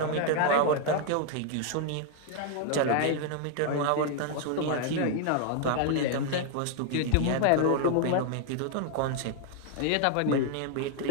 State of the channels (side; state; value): both; different; correlation 0.00